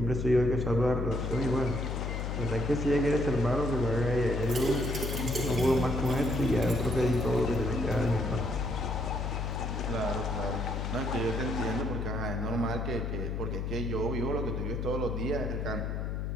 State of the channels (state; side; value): noise; left; hum, 2 dB below the sound